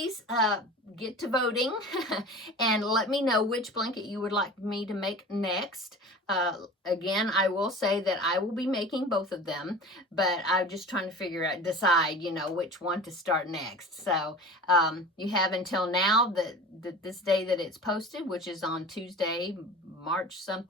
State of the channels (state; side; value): normal; both; correlation 0.38